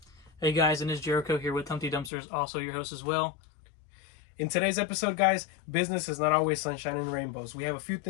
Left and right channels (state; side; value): drops out; right; at 2.1 s